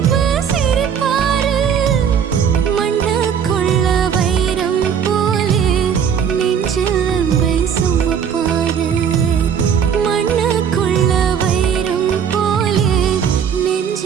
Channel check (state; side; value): quieter; left; 7.7 dB